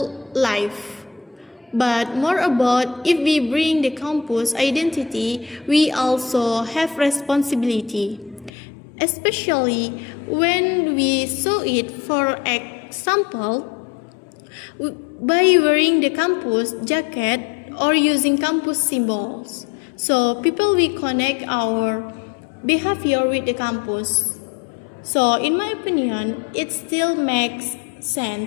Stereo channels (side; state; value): right; drops out; at 8.5 s